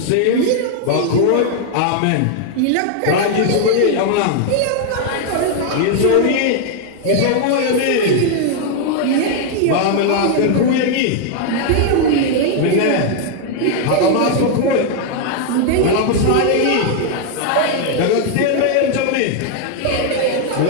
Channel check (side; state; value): both; different; correlation 0.00